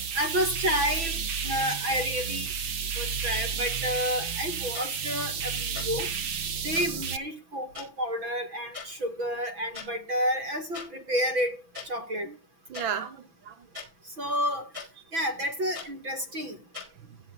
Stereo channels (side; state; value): left; late; 6.0 ms